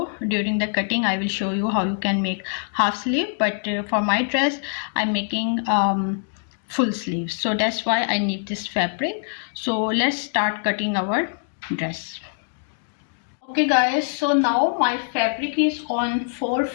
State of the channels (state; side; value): silent; right; digital silence